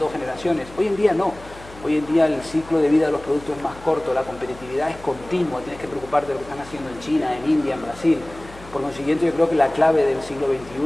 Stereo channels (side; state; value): left; noise; hum, 19 dB below the sound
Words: generaciones. Hoy en día no. Hoy en día el ciclo de vida de los productos es más corto, la competitividad es continua, tienes que preocuparte de lo que están haciendo en China, en India, en Brasil. Por consiguiente, yo creo que la clave del siglo